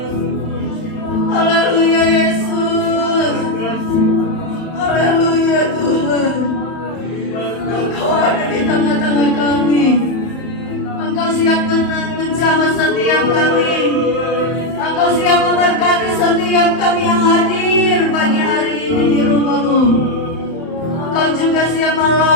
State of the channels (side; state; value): right; late; 31 ms